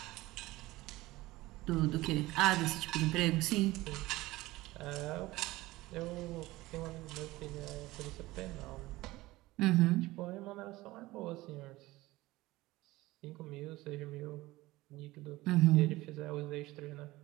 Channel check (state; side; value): quieter; left; 18.8 dB